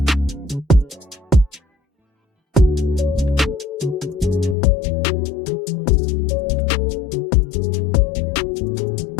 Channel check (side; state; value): right; drops out; at 4.5 s